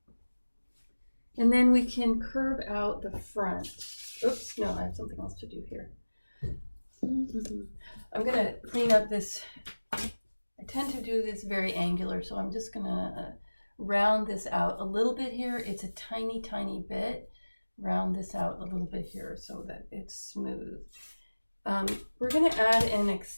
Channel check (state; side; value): inverted; both; correlation -1.00